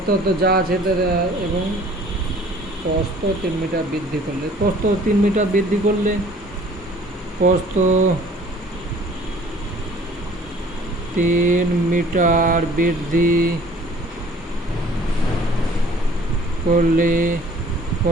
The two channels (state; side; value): normal; both; correlation 0.53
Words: তো যা আছে এবং প্রস্থ 3 মিটার বৃদ্ধি করলে, প্রস্থ 3 মিটার বৃদ্ধি করলে, প্রস্থ 3 মিটার বৃদ্ধি করলে